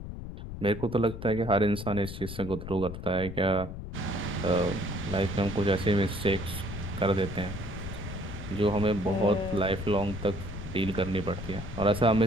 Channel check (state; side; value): noise; left; rumble, 9 dB below the sound